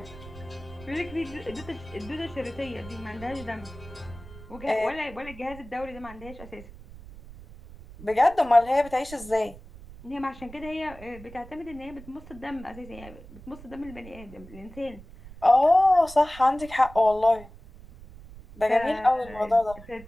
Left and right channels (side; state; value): right; noise; rumble, 17 dB below the sound